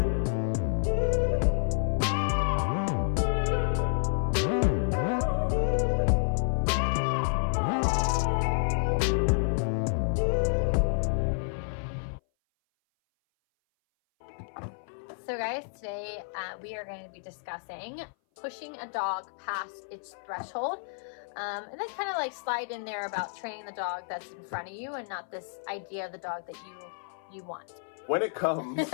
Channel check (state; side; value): silent; right; 57 dB below the other